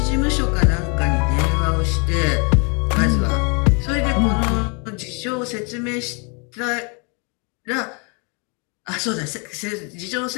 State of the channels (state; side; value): quieter; right; 34.5 dB